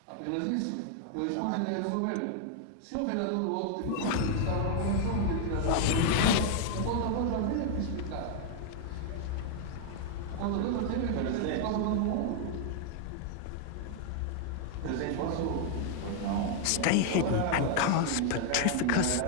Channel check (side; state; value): both; different; correlation 0.00